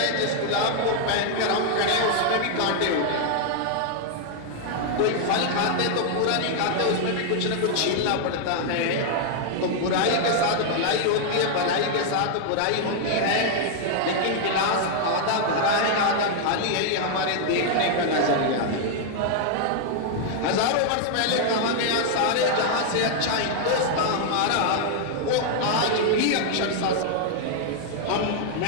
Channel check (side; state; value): both; different; correlation 0.00